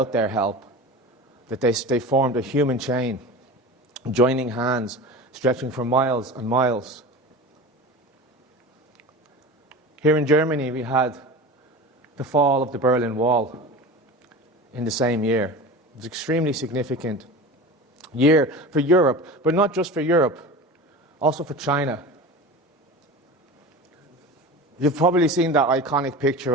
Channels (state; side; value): normal; both; correlation 0.32